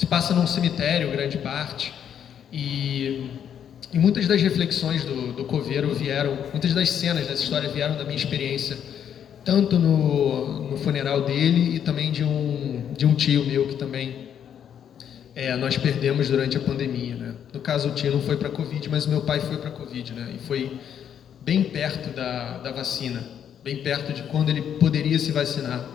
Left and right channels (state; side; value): quieter; right; 8.9 dB